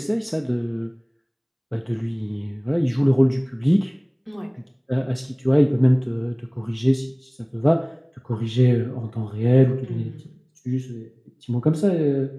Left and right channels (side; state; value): both; identical; correlation 1.00